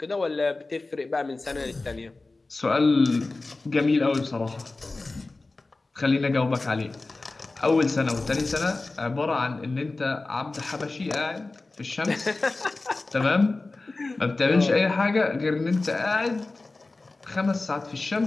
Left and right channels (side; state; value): right; quieter; 3.3 dB